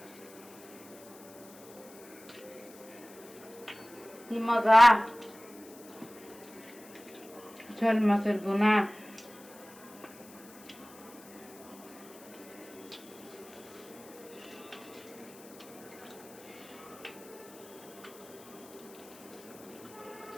কি মজা শোল মাছের ভুনা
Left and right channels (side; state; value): left; noise; hiss, 20 dB below the sound